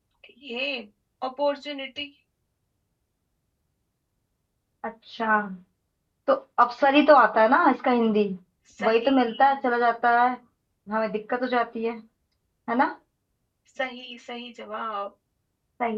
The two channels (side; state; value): both; identical; correlation 1.00